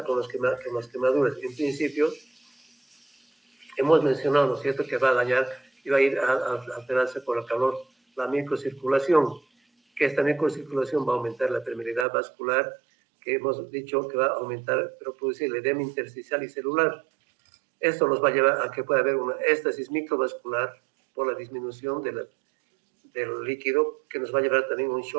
con las quemaduras. En principio, hemos mencionado, ¿no es cierto?, que va a dañar y va a ir a alterarse por el calor la microcirculación, que esta microcirculación va a aumentar la permeabilidad vascular, que hemos dicho que va a aumentar, pero producir el edema intersticial y celular. Esto nos va a llevar a que pueda haber una éstasis microvascular por la disminución del líquido, que nos va a llevar también a un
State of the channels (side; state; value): left; drops out; at 12.1 s